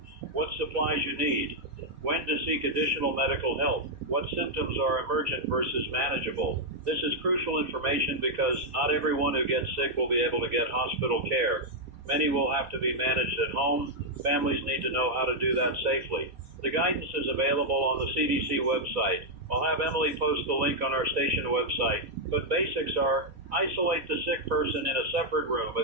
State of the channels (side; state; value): left; late; 4.1 ms